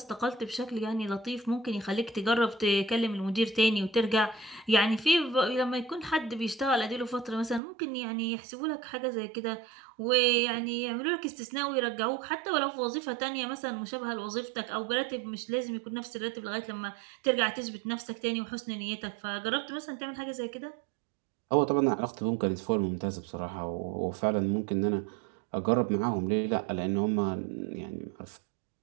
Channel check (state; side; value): drops out; left; at 7.6 s